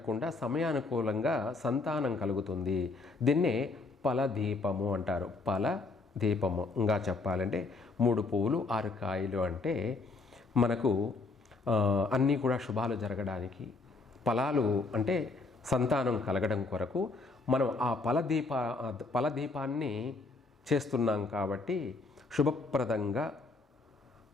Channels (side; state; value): right; quieter; 3.7 dB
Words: సమయానుకూలంగా సంతానం కలుగుతుంది. దీన్నే ఫలదీపము అంటారు. ఫలదీపము ఇంకా చెప్పాలంటే 3 పువ్వులు 6 కాయలు అంటే మనకు అన్నీ కూడా శుభాలు జరగడానికి, ఫలాలు అంటే సంతానం కలగడం కొరకు మనం ఆ ఫలదీపాన్ని చేస్తున్నాం. కాబట్టి శుభప్రదంగా,